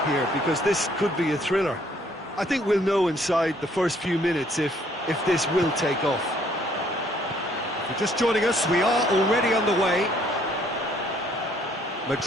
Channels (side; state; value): both; normal; correlation 0.64